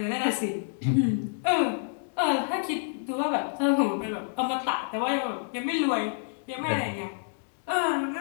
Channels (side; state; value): right; silent; digital silence